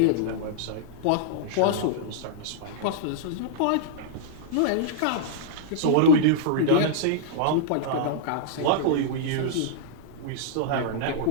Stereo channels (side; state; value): both; different; correlation -0.02